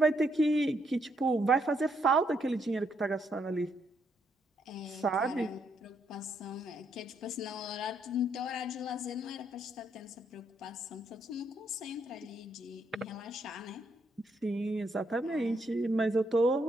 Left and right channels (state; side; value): normal; both; correlation 0.75